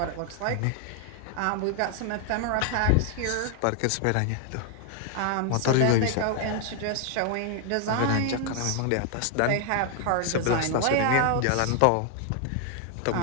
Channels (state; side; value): different; both; correlation 0.00